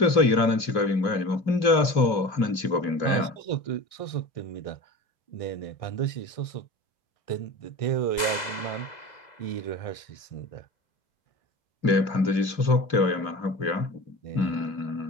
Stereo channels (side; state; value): right; late; 2.0 ms